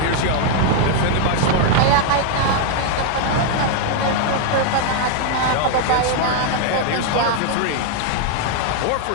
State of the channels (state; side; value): different; both; correlation 0.00